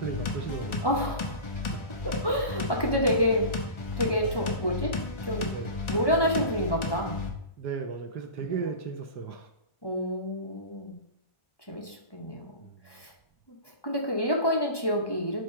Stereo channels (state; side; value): late; right; 1.1 ms